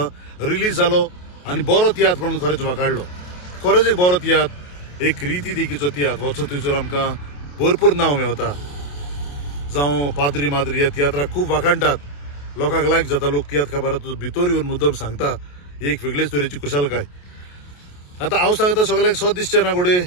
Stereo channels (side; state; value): right; late; 28 ms